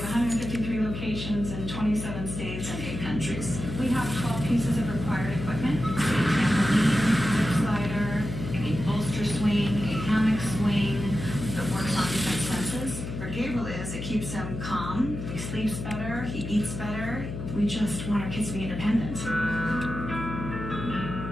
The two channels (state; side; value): noise; left; hum, 7 dB below the sound